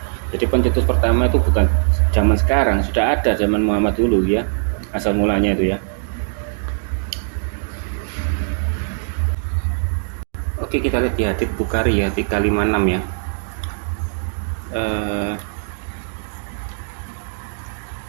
Jadi pencetus pertama itu bukan zaman sekarang, sudah ada zaman Muhammad dulu ya, asal mulanya itu ya. Oke, kita lihat di hadits Bukhari ya, 356 ya.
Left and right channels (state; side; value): silent; left; 65 dB below the other